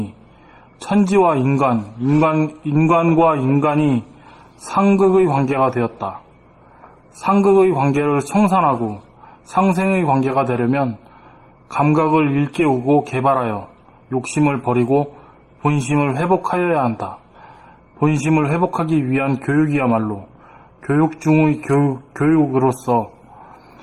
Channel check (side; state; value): both; identical; correlation 1.00